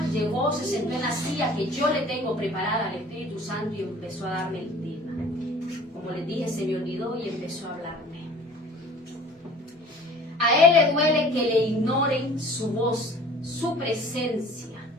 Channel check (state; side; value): normal; both; correlation 0.48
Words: llegó, se sentó en la silla que yo le tengo preparada al Espíritu Santo y empezó a darme el tema. Como les dije, se me olvidó y empezó a hablarme. A él le duele que le ignoren su voz, su presencia.